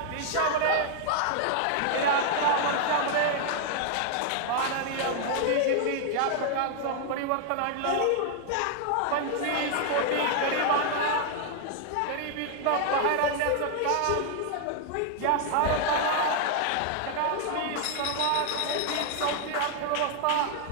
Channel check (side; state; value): both; different; correlation 0.00